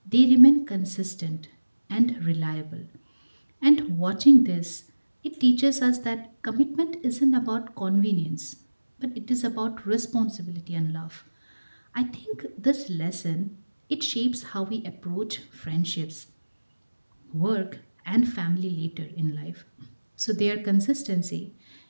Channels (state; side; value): inverted; both; correlation -1.00